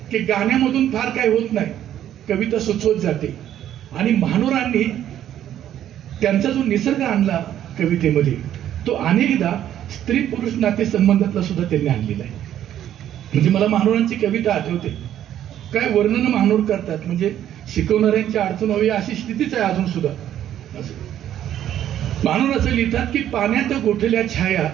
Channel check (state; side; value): quieter; left; 11.2 dB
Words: की गाण्यामधून फार काय होत नाही, कविता सुचवत जाते. आणि महानोरांनी त्यांचा जो निसर्ग आणला कवितेमध्ये तो अनेकदा स्त्री पुरुष नाते संबंधातला सुद्धा त्यांनी आणलेला आहे. म्हणजे मला महानोरांची कविता आठवते, काय वर्णन महानोर करतात, म्हणजे शिकवणाऱ्यांची अडचण व्हावी अशी स्थितीच आहे अजून सुद्धा. असं महानोर असं लिहितात की पाण्यात गोठल्या छाया